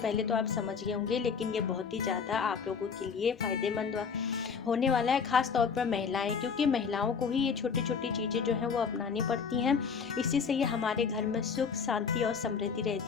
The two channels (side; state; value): right; quieter; 6.0 dB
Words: तो आप समझ गए होंगे, लेकिन ये बहुत ही ज़्यादा आप लोगों के लिए फ़ायदेमंद होने वाला है, ख़ास तौर पर महिलाएं, क्योंकि महिलाओं को ही ये छोटी छोटी चीज़ें जो हैं वो अपनानी पड़ती हैं। इसी से ये हमारे घर में सुख शांति और समृद्धि